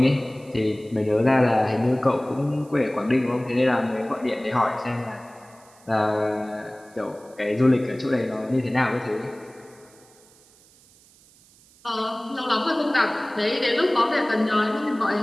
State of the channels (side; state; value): right; noise; hiss, 28 dB below the sound